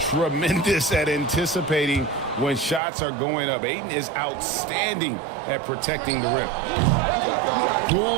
at anticipating when shots are going up. Ayton is outstanding at protecting the rim. Poole,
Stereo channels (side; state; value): left; drops out; at 2.8 s